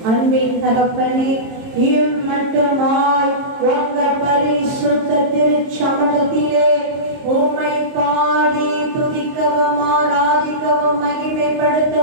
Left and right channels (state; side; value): late; left; 22 ms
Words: அன்பின் தகப்பனே, மட்டுமாய் உங்க பரிசுத்த திருச்சமூகத்திலே உம்மை பாடி துதிக்கவும் ஆராதிக்கவும்